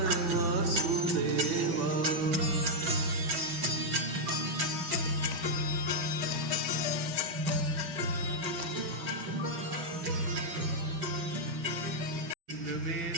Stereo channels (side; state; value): left; late; 6.0 ms